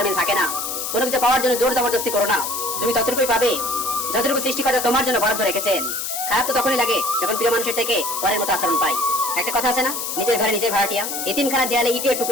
মিল থাকে না। কোনো কিছু পাওয়ার জন্য জোর জবরদস্তি করো না, তুমি ততটুকুই পাবে যতটুকু সৃষ্টিকর্তা তোমার জন্য বরাদ্দ রেখেছেন। খারাপ তো তখনই লাগে যখন প্রিয় মানুষের থেকে পরের মতো আচরণ পাই। একটা কথা আছে না, নিজের ঘরে নিজের ভাড়াটিয়া। এতিমখানার দেয়ালে ইটের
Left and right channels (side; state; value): left; noise; hiss, 4 dB below the sound